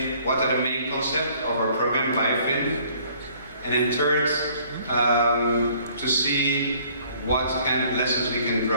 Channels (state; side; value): inverted; both; correlation -0.59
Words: what are the main concepts of our program, BioFin. And then third, to see what kind of lessons we can